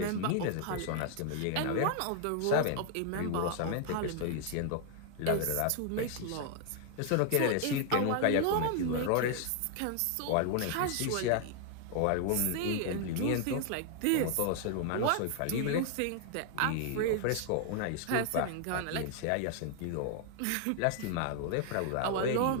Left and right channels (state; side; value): different; both; correlation 0.00